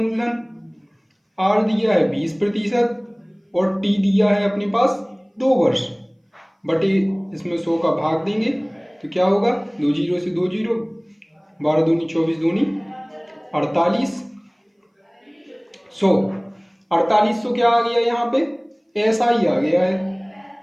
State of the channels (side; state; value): both; identical; correlation 1.00